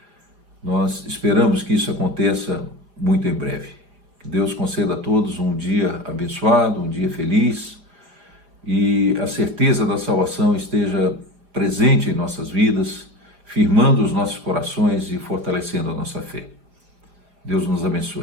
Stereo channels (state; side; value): late; left; 4.9 ms